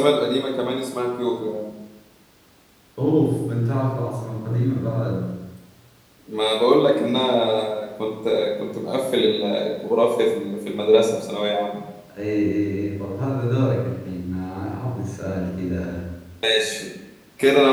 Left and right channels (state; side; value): identical; both; correlation 1.00